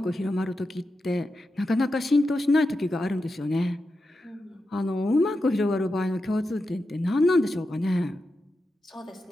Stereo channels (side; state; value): both; normal; correlation 0.89